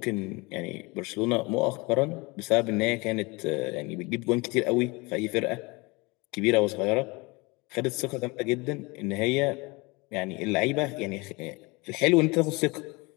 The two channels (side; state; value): right; quieter; 25.8 dB